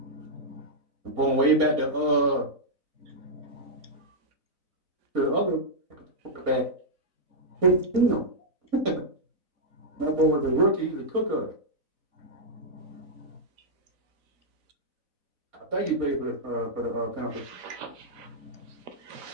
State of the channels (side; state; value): left; late; 4.0 ms